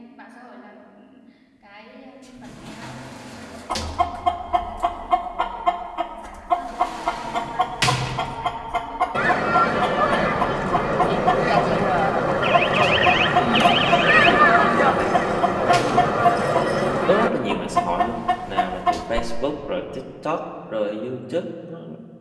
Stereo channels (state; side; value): identical; both; correlation 1.00